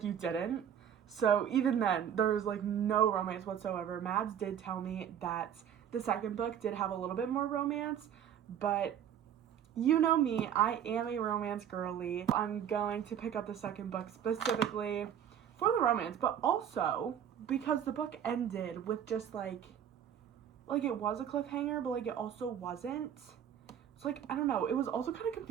you didn't. So even then, there's like no romance whatsoever. Mads did tell me that the second book did have a little bit more romance, but you know me, I am a romance girly. I'm going to pick up the second book specifically for the romance, but also because the book ended with just like it was a cliffhanger, but like it also wasn't. So like, I don't know. It was also kind of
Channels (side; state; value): left; quieter; 9.2 dB